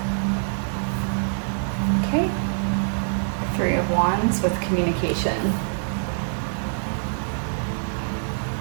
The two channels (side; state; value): left; silent; digital silence